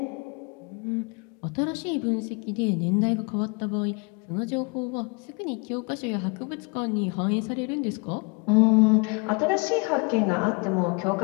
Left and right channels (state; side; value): quieter; right; 32.0 dB